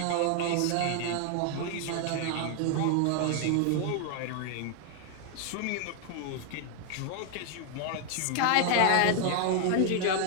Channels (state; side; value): different; both; correlation 0.00